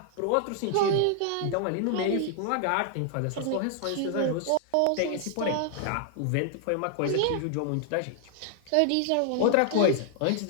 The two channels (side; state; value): both; different; correlation 0.00